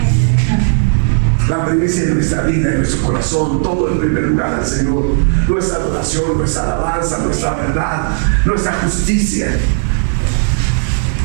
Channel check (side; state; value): left; silent; digital silence